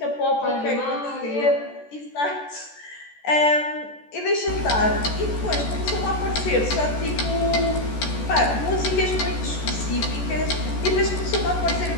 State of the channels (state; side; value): late; right; 14 ms